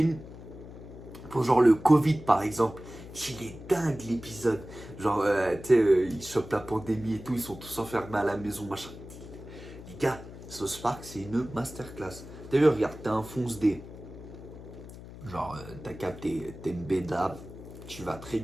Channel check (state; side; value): noise; left; hum, 15 dB below the sound